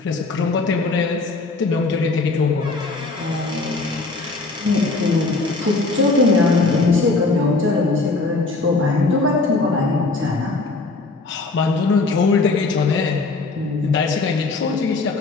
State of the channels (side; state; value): right; quieter; 3.6 dB